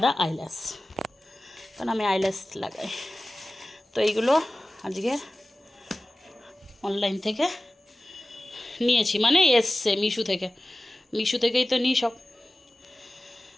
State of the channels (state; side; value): normal; both; correlation 0.96